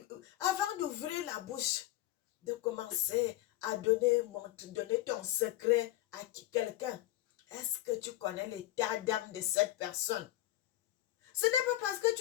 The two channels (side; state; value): right; quieter; 15.4 dB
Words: la bouche, de commencer à donner ton secret à quelqu'un, est-ce que tu connais l'état d'âme de cette personne? Ce n'est pas parce que